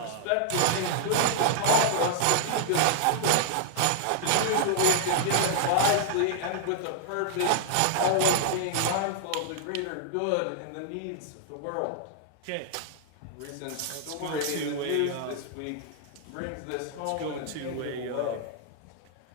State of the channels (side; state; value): both; different; correlation -0.01